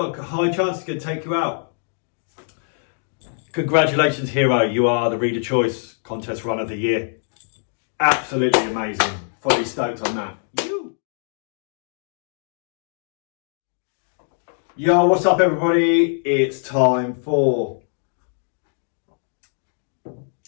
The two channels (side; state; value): right; silent; 63 dB below the other